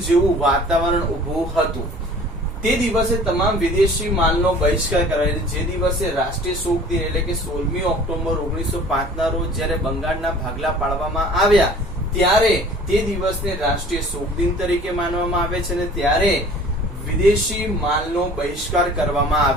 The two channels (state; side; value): normal; both; correlation 0.48